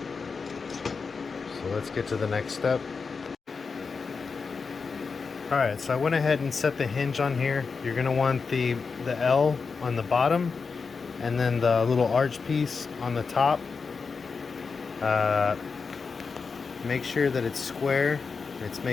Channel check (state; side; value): quieter; right; 5.0 dB